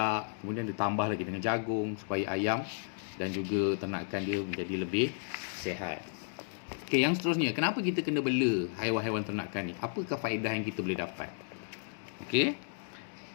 kemudian ditambah lagi dengan jagung supaya ayam dan juga ternakan dia menjadi lebih sihat. Okey, yang seterusnya, kenapa kita kena bela haiwan-haiwan ternakan ni? Apakah faedah yang kita boleh dapat? Okey.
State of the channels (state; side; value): silent; right; digital silence